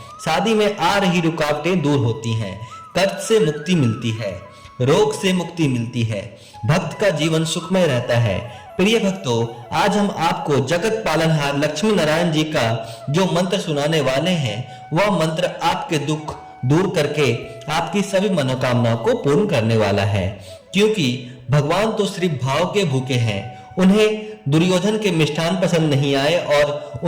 शादी में आ रही रुकावटें दूर होती हैं। कर्ज से मुक्ति मिलती है। रोग से मुक्ति मिलती है। भक्त का जीवन सुखमय रहता है। प्रिय भक्तों, आज हम आपको जगत पालनहार लक्ष्मी नारायण जी का जो मंत्र सुनाने वाले हैं, वह मंत्र आपके दुख दूर करके आपकी सभी मनोकामनाओं को पूर्ण करने वाला है। क्योंकि भगवान तो सिर्फ भाव के भूखे हैं। उन्हें दुर्योधन के मिष्ठान पसंद नहीं आए और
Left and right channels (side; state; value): both; identical; correlation 1.00